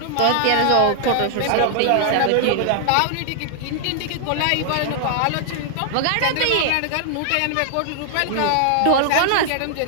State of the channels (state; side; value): different; both; correlation 0.00